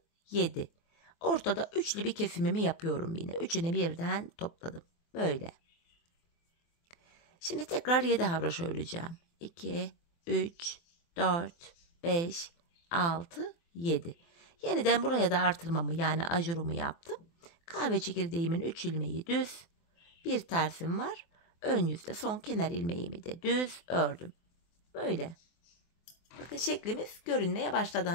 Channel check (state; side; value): late; right; 24 ms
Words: 7. Ortada üçlü bir kesimimi yapıyorum yine. Üçünü birden topladım. Böyle. Şimdi tekrar 7 haroşa öreceğim. 2, 3, 4, 5, 6, 7. Yeniden buraya da artırmamı yani ajurumu yaptım. Kahve çekirdeğimin 3 ilmeği düz. Bir tersim var. Ön yüzde son kenar ilmeğimi de düz ördüm. Böyle. Bakın şeklimiz görünmeye başladı